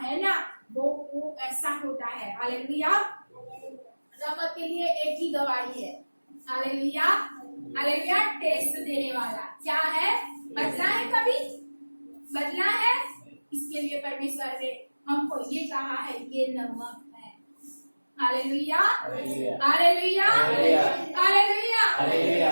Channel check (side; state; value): both; inverted; correlation -1.00